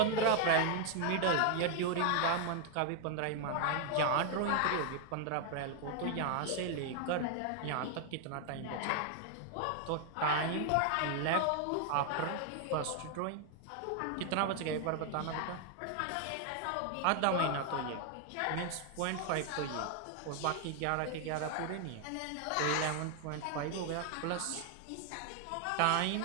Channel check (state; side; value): different; both; correlation 0.00